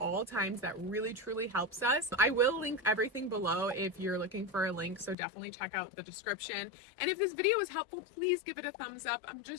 times that really truly helps us. I will link everything below if you're looking for a link, so definitely check out the description. And if this video was helpful, please give it a thumbs up. I'm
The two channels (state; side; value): drops out; right; at 5.2 s